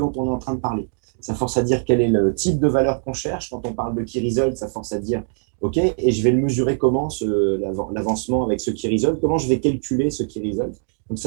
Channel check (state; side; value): silent; left; digital silence